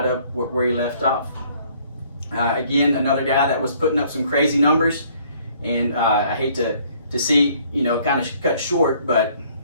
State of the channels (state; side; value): inverted; both; correlation -0.61